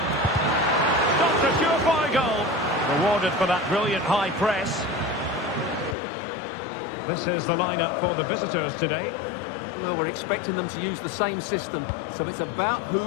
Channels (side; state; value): right; drops out; at 6.0 s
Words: Stopped a surefire goal. Rewarded for that brilliant high press. This is the lineup for the visitors today. Well, we're expecting them to use the same system, so it's about